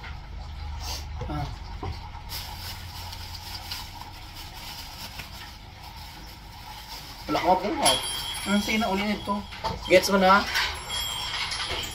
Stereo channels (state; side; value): identical; both; correlation 1.00